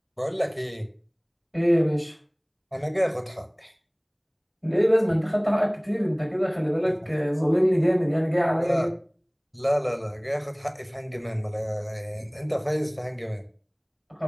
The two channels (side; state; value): both; identical; correlation 1.00